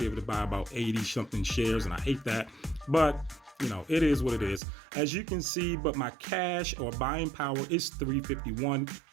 able to buy about 80 something shares, and I hate that, but you know, it is what it is. As you can see, but my cash or buying power is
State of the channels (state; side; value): drops out; left; at 4.6 s